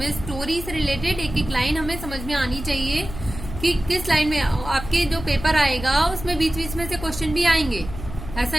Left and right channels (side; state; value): left; noise; hum, 10 dB below the sound